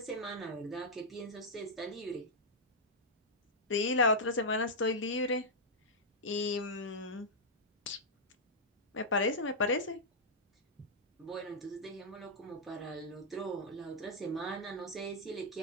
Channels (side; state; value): both; normal; correlation -0.07